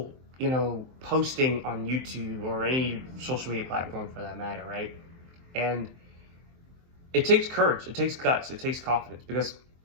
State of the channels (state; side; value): late; left; 23 ms